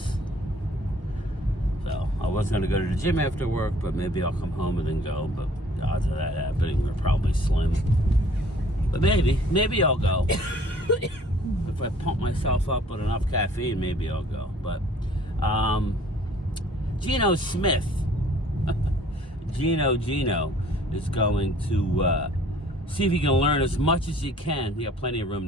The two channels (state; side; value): normal; both; correlation 0.55